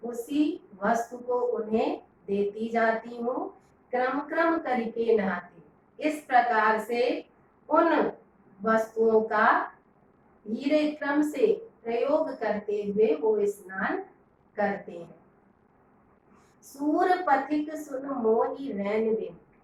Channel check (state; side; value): identical; both; correlation 1.00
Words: उसी वस्तु को उन्हें देती जाती हूँ, क्रम क्रम करके नहाती। इस प्रकार से उन वस्तुओं का धीरे क्रम से प्रयोग करते हुए वो स्नान करते हैं। सूर पथिक सुन मोहि रैन दिन।